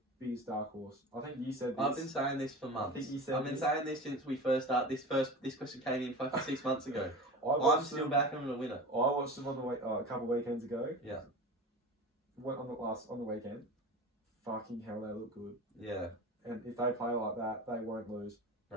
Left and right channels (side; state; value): both; normal; correlation 0.32